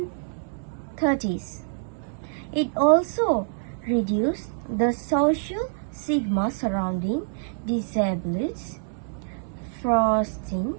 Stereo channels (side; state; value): left; silent; 61 dB below the other